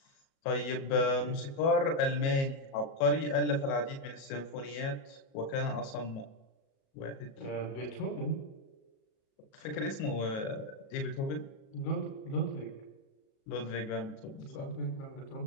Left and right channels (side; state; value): right; late; 37 ms